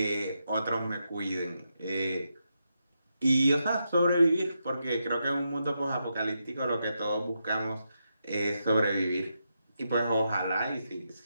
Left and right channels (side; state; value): both; inverted; correlation -0.84